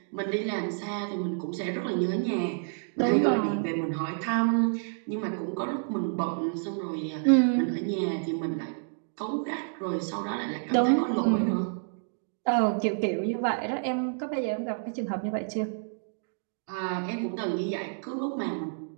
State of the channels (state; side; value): silent; left; digital silence